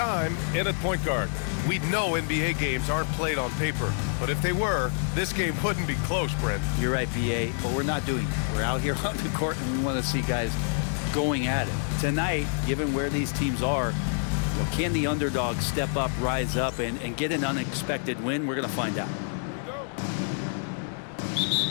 in at point guard. We know NBA games aren't played on paper, but if they were, this game wouldn't be close, Brent. You're right, BA, but we're not doing it. We're out here on the court, and we want to see guys going at it. Tonight, given where these teams are, can the underdog step up, rise up, and get an unexpected win? We're going to find out.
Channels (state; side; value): silent; right; digital silence